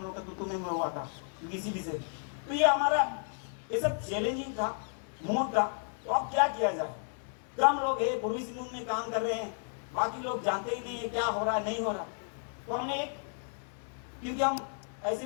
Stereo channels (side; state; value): right; silent; 56 dB below the other